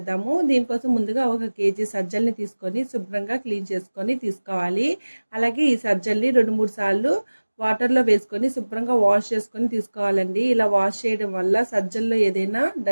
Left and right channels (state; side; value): inverted; both; correlation -1.00